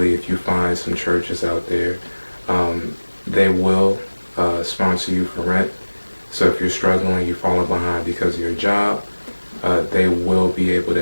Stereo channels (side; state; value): both; inverted; correlation -1.00